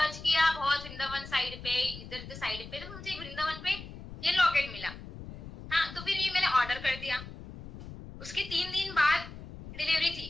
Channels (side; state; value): left; noise; rumble, 13 dB below the sound